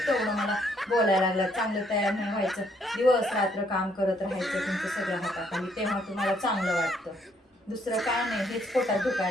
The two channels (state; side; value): normal; both; correlation 0.69